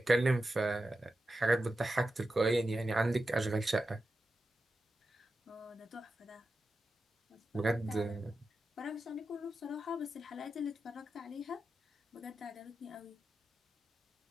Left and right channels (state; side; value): normal; both; correlation 0.91